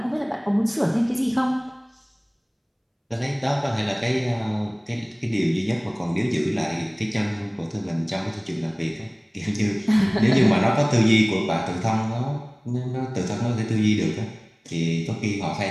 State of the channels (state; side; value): identical; both; correlation 1.00